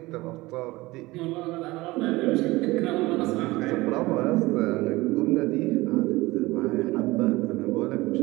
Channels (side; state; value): left; quieter; 20.3 dB